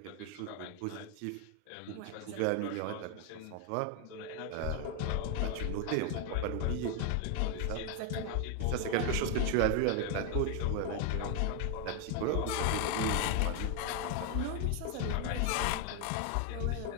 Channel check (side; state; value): both; different; correlation 0.01